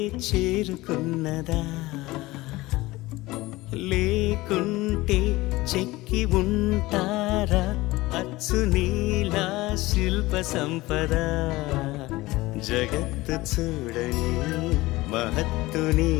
చేరుకున్నదా లేకుంటే చెక్కి ఉంటారా అచ్చు నీలా శిల్ప సంపద జగత్తు చూడని మహత్తు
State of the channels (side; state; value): right; quieter; 19.6 dB